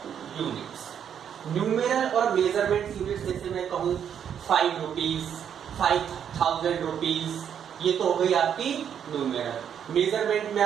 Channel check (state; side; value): quieter; left; 8.5 dB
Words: units. Numeral और मेजरमेंट यूनिट्स जैसे मैं कहूं 5 रुपीज, 5000 रुपीज, ये तो हो गई आपकी न्यूमेरल। मेजरमेंट में